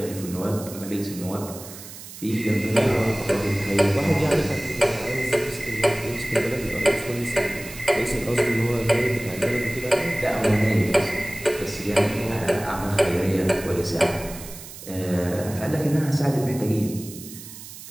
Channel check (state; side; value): noise; right; hiss, 14 dB below the sound